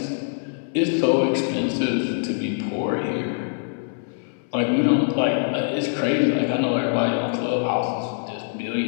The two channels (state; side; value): silent; right; 63 dB below the other